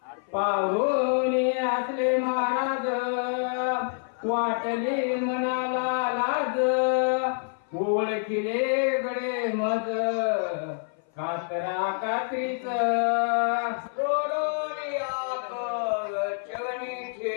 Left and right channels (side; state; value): right; silent; 57 dB below the other